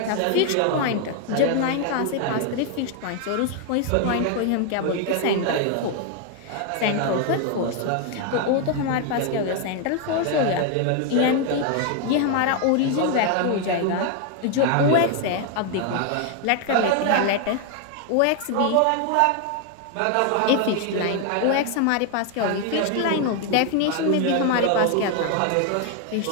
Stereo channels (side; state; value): both; different; correlation 0.01